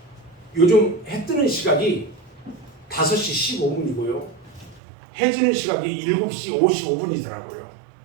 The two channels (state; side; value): drops out; left; at 4.8 s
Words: 요즘 해 뜨는 시각이 5시 15분이고요. 해 지는 시각이 7시 55분이더라고요.